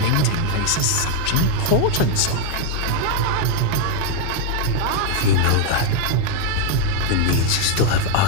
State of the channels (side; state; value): both; different; correlation 0.00